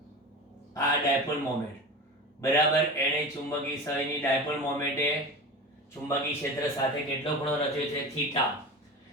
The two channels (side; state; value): both; normal; correlation 0.30